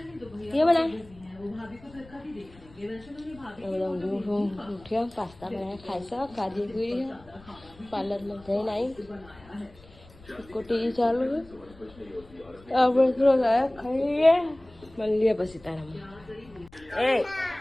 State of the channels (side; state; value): left; noise; rumble, 23 dB below the sound